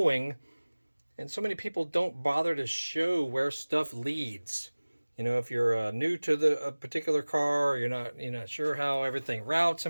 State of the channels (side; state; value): both; inverted; correlation -1.00